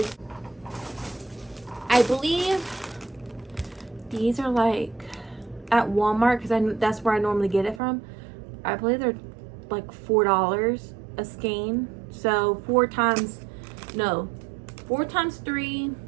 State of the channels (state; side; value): drops out; left; at 7.8 s